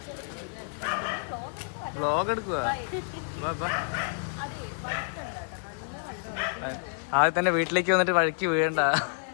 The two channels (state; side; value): silent; right; digital silence